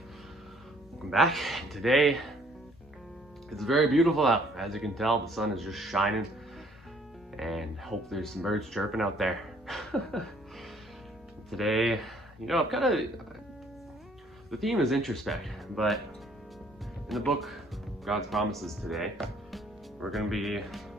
welcome back. Today it's very beautiful out. As you can tell, the sun is just shining, and hope there's some birds chirping out there. Today, I'm the theme is introspect, but in the book God's Promises today, we're going to be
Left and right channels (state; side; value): normal; both; correlation 0.61